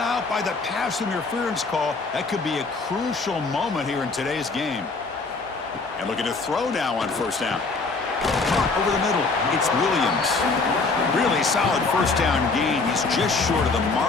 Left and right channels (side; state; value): right; quieter; 4.0 dB